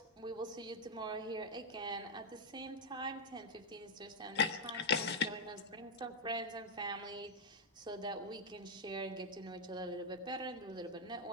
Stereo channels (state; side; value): normal; both; correlation 0.00